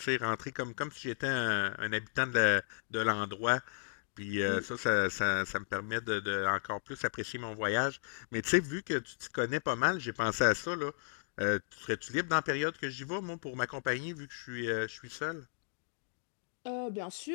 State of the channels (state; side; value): silent; right; digital silence